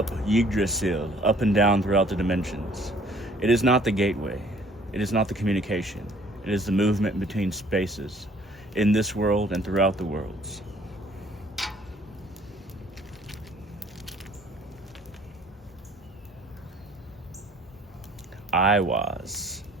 Yggdrasil, up and down throughout the dimensions. It is not the gateway. It is not the communication. It is the movement between spaces in this world and throughout the worlds. Iwaz,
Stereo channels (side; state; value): both; normal; correlation 0.57